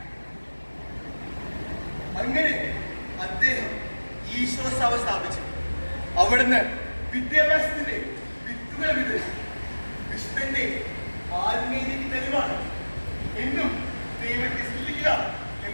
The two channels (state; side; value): inverted; both; correlation -1.00